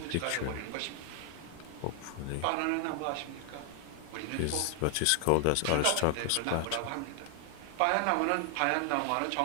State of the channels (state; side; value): different; both; correlation 0.00